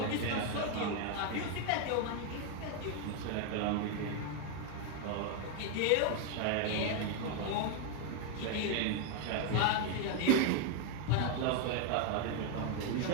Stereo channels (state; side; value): different; both; correlation 0.01